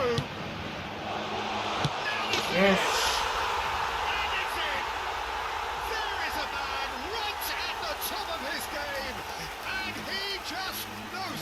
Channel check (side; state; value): both; identical; correlation 1.00